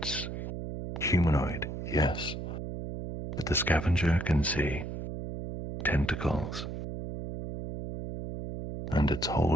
humanoid, yes. But the Scavenger can see tentacles. And it's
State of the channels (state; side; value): noise; right; hum, 6 dB below the sound